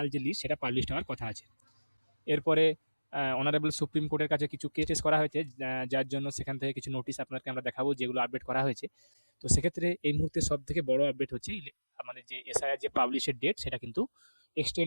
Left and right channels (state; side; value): inverted; both; correlation -1.00